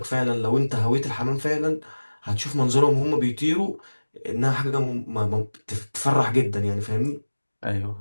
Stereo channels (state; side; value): inverted; both; correlation -1.00